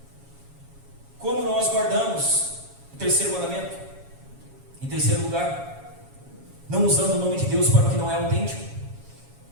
Como nós guardamos o terceiro mandamento? Em terceiro lugar, não usando o nome de Deus para o que não é autêntico.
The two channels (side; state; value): left; late; 7.2 ms